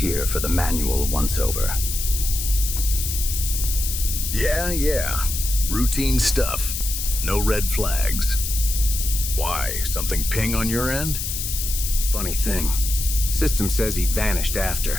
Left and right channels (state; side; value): noise; left; hiss, 4 dB below the sound